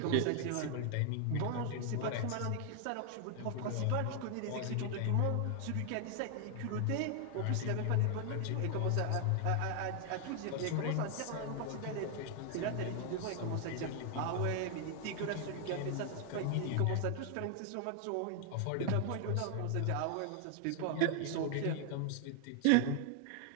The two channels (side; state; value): both; different; correlation 0.00